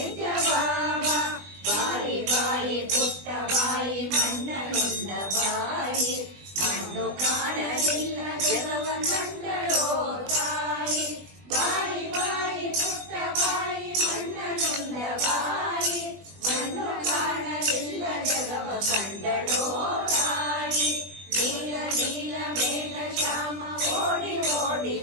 ಬಾಬಾ ಬಾಯಿ ಬಾಯಿ ಪುಟ್ಟ ಬಾಯಿ ಮಣ್ಣನುಂಡ ಬಾಯಿ ಮಣ್ಣು ಕಾಣಲಿಲ್ಲ ಜಗವ ಕಂಡಳೋ ತಾಯಿ ಬಾಯಿ ಬಾಯಿ ಪುಟ್ಟ ಬಾಯಿ ಮಣ್ಣನುಂಡ ಬಾಯಿ ಮಣ್ಣು ಕಾಣಲಿಲ್ಲ ಜಗವ ಕಂಡಳೋ ತಾಯಿ ನೀಲ ನೀಲ ಮೇಘ ಶ್ಯಾಮ ಓಡಿ ಓಡಿ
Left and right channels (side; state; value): left; late; 20 ms